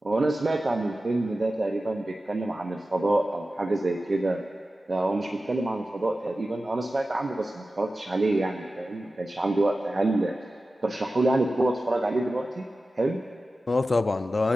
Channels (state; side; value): normal; both; correlation 0.94